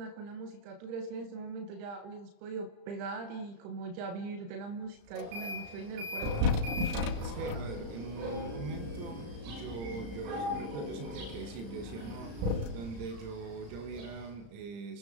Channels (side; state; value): left; late; 35 ms